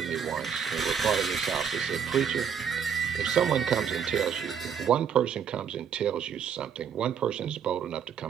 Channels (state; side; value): quieter; left; 7.6 dB